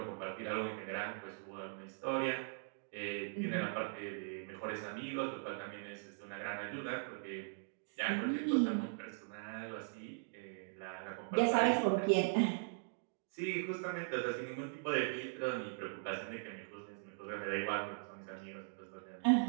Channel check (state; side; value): silent; left; digital silence